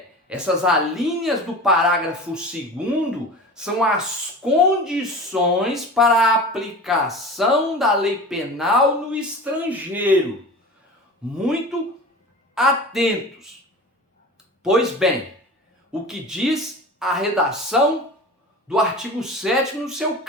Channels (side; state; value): both; normal; correlation 0.35